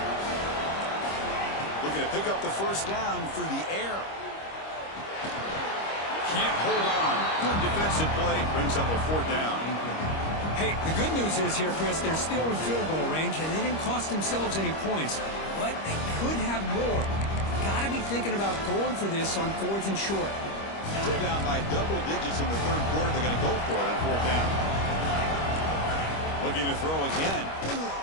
Looking to pick up the 1st down through the air. Can't hold on. Good defensive play. Brings up a 4th down. Hey, the good news is here, Chris, they're still in field goal range, and they didn't cost themselves any points. But they could have more. Got to be thinking about going for this on 4th and short. Still down by double digits in the 3rd quarter. They're going to go for it on 4th down. Looking to throw again.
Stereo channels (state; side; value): late; right; 25 ms